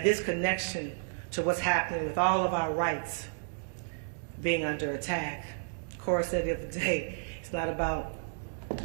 this connection to what's happening with all of our rights being under attack. Cora said the other day, it's not about,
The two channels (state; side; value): silent; left; 56 dB below the other